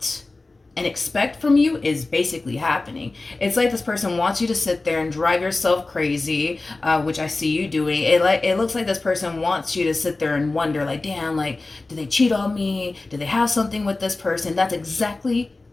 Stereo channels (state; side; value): quieter; right; 3.3 dB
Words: and expect from you is basically happening. It's like this person wants you to sit there and drive yourself crazy, which I see you doing. It looks like this person wants you to sit there and wonder, like, damn, like, did they cheat on me? Did they have something with this person? That's exactly